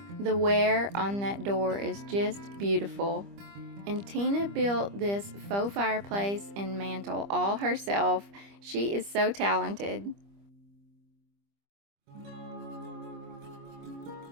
The wear on that door is just beautiful. And Tina built this faux fireplace and mantle all herself. She is so talented.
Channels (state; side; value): late; left; 25 ms